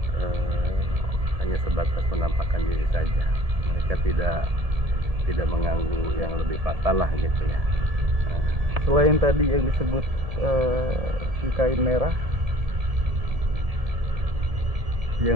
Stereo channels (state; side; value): late; left; 1.7 ms